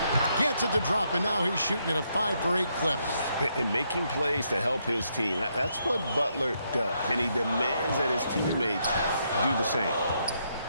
Gets it to drop, and now he's shooting at a 5 for 8 clip. And making plays to help his team. That's what Butler does, and he demands that his teammates do the same.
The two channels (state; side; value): inverted; both; correlation -0.77